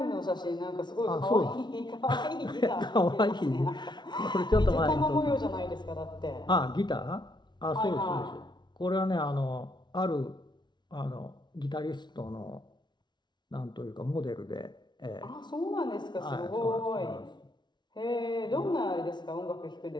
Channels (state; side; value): late; right; 0.21 ms